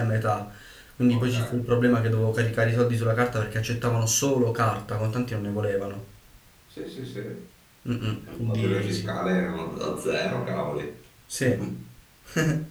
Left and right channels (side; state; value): both; identical; correlation 1.00